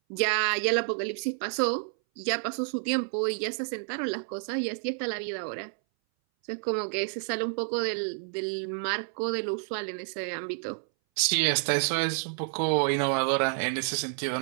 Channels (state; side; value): silent; left; 58 dB below the other